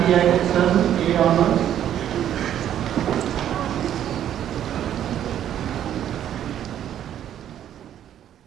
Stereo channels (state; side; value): quieter; left; 10.7 dB